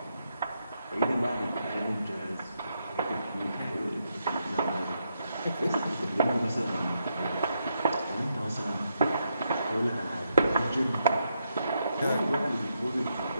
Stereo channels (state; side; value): inverted; both; correlation -0.80